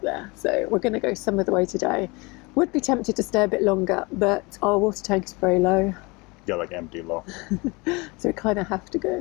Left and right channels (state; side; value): quieter; right; 26.4 dB